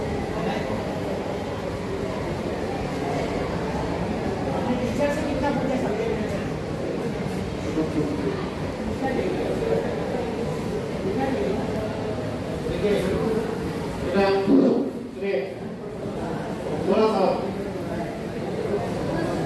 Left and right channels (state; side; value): identical; both; correlation 1.00